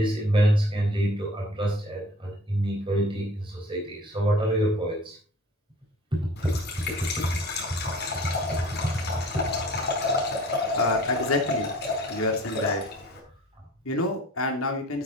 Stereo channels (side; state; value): both; normal; correlation 0.46